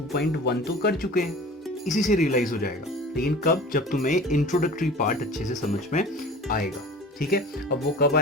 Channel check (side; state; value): both; normal; correlation 0.40